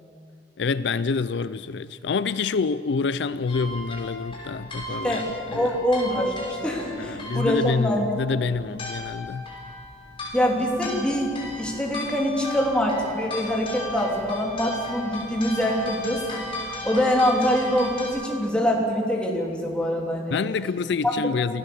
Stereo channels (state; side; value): normal; both; correlation 0.56